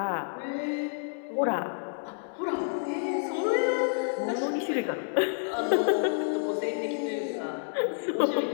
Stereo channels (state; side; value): silent; right; digital silence